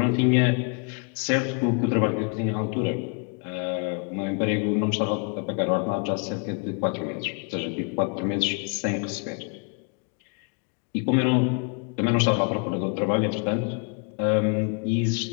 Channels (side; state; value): right; quieter; 37.6 dB